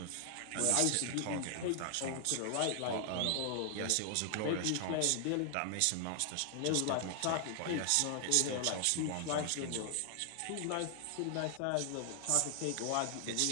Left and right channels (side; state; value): both; different; correlation 0.00